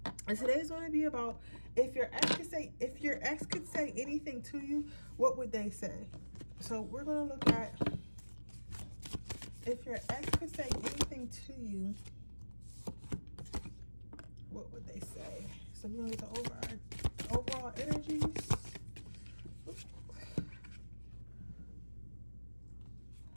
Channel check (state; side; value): inverted; both; correlation -1.00